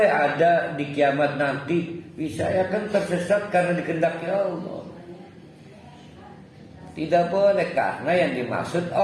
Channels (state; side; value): identical; both; correlation 1.00